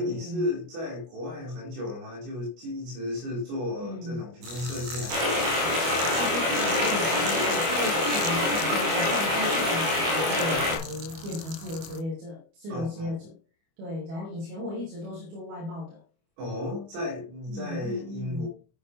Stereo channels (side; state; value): left; late; 25 ms